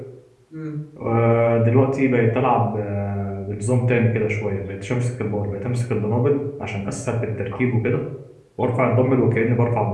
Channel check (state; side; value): identical; both; correlation 1.00